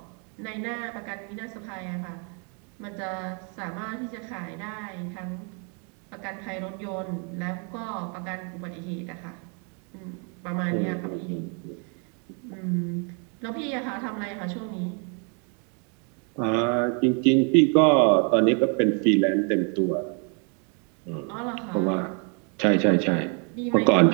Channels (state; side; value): quieter; left; 37.8 dB